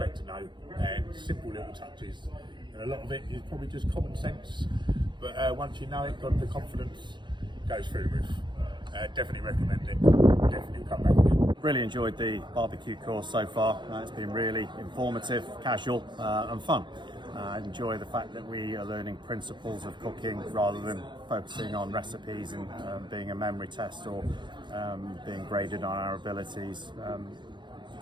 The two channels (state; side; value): late; left; 0.22 ms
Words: to know, and simple little touches. And a lot of it is probably just common sense, but once you know it, got the confidence goes through the roof. Definitely recommend it. Definitely come back again. Really enjoyed the barbecue course so far. It's been really informative, casual and fun. I enjoy the fact that we are learning principles of cooking rather than focusing on recipes and being a memory test or being graded on our abilities.